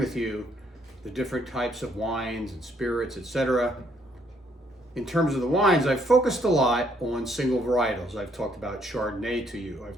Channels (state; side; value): normal; both; correlation 0.69